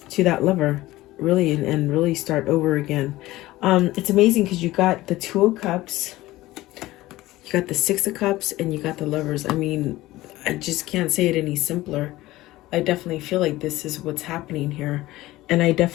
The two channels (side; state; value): right; quieter; 17.4 dB